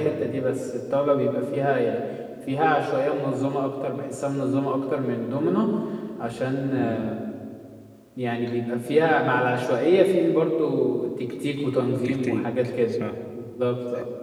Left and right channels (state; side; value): identical; both; correlation 1.00